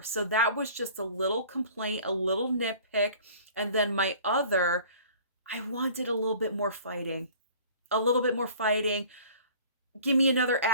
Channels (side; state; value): both; inverted; correlation -0.48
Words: So that was just a little complaint, a little nitpick. And then I wanted a little bit more fighting. A little bit more fighting. give me another